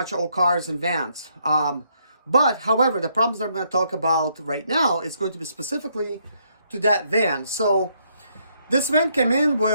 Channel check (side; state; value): both; inverted; correlation -0.73